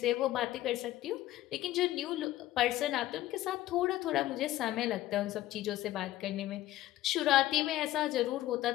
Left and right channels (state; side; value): quieter; right; 15.0 dB